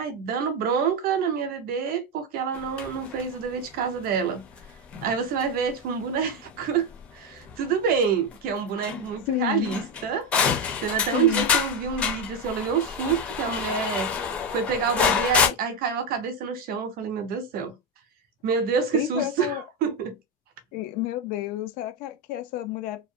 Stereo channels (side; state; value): both; normal; correlation 0.10